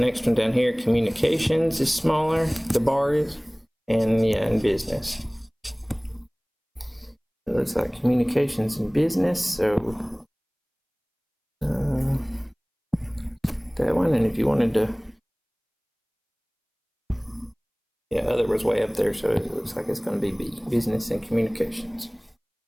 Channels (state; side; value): identical; both; correlation 1.00